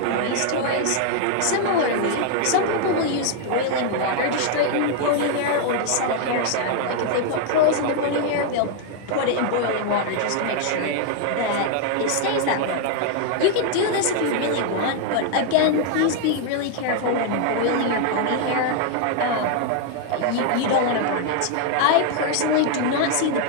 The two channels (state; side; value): different; both; correlation 0.00